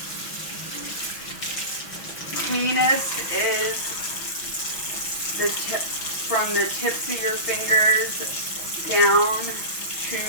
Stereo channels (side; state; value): right; late; 6.0 ms